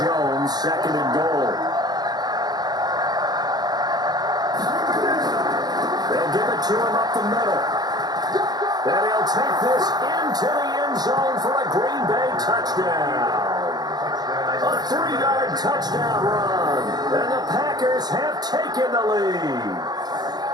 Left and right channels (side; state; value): left; late; 0.20 ms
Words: 2nd and goal. They'll give it to him up the middle. And he'll take this into the end zone for a Green Bay touchdown. A 3-yard touchdown run. And the Packers have taken the lead.